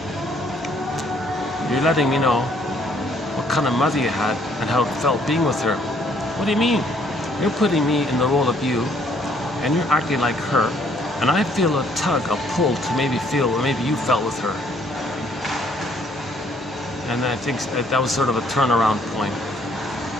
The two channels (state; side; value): normal; both; correlation 0.65